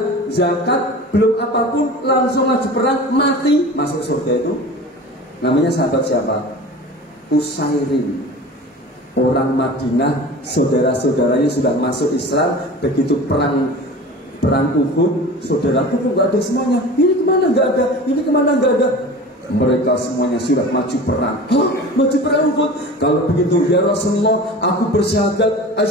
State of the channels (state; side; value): normal; both; correlation 0.37